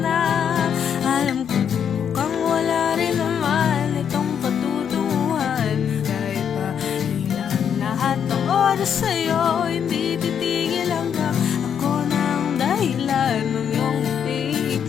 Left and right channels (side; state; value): right; quieter; 8.0 dB